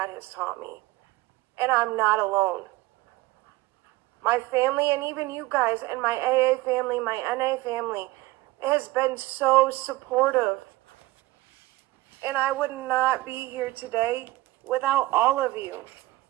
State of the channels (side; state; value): left; quieter; 19.2 dB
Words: has taught me. And I'm not alone. My family, and even you guys, and my AA family, my NA family, has been so supportive. And I would not be here today without all of you,